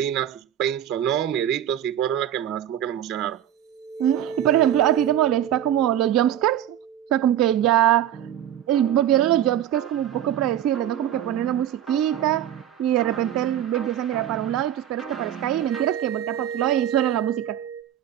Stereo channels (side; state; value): left; quieter; 11.0 dB